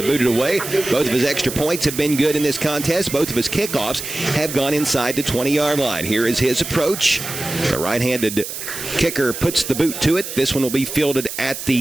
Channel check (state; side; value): noise; right; hiss, 8 dB below the sound